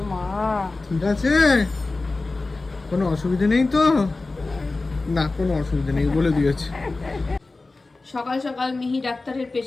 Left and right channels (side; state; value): right; quieter; 3.4 dB